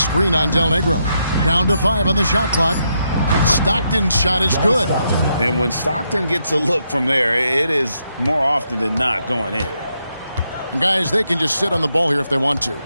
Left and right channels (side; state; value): both; inverted; correlation -0.80